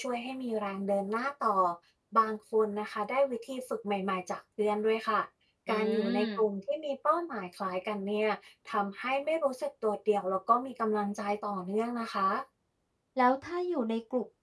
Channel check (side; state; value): both; identical; correlation 1.00